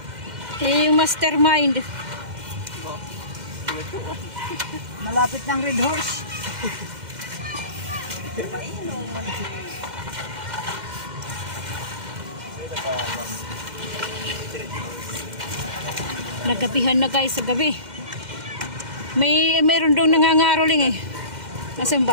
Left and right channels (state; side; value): late; left; 2.1 ms